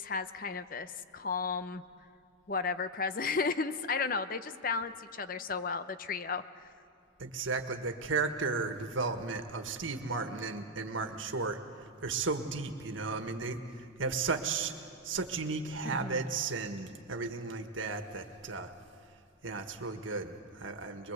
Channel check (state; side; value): normal; both; correlation 0.01